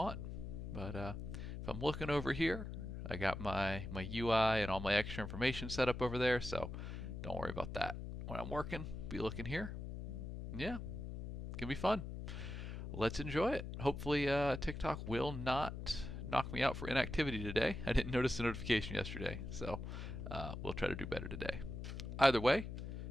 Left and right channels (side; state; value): left; noise; hum, 6 dB below the sound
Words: But if I'm looking over here, I got my UI and all my extra information set up over there, so don't worry about that. When I'm working, be looking here. Yeah, it can be fun. Let's enjoy it. Hopefully TikTok will not knock me out for inactivity today. I didn't notice the notification yesterday, so we'll try to do better today. Either way,